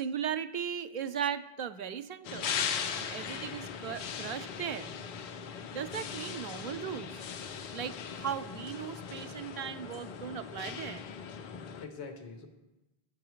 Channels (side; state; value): right; late; 4.1 ms